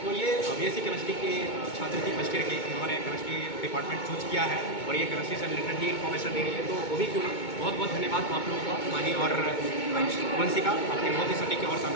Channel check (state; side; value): late; right; 2.2 ms